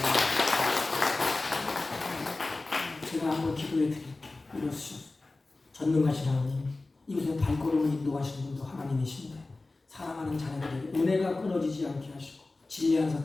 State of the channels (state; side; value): quieter; right; 3.2 dB